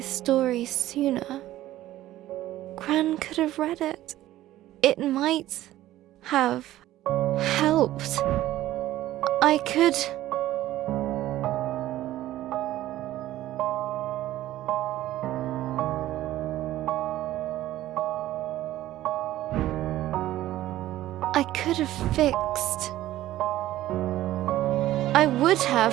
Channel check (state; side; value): quieter; left; 14.6 dB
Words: story sooner, Gran could have read it. It might have helped. I could... I could have fixed. I would